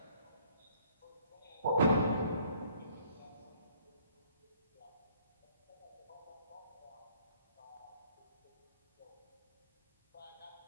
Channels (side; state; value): both; inverted; correlation -0.61